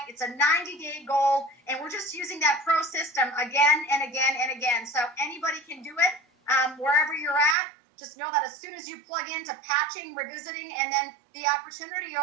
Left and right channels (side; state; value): left; drops out; at 7.6 s